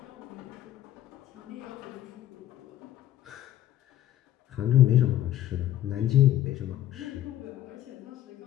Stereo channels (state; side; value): quieter; right; 12.8 dB